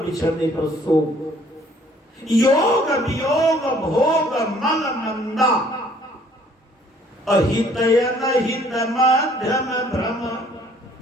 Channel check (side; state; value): both; normal; correlation 0.59